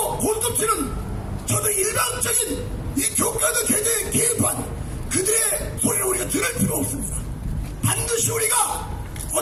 골톱치는 저도 일방적인 이 교과서 개정에 개입한 그들의 소리를 우리가 들을 필요 없습니다. 반드시 우리가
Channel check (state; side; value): identical; both; correlation 1.00